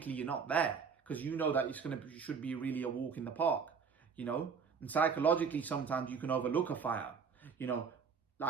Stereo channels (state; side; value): quieter; left; 5.9 dB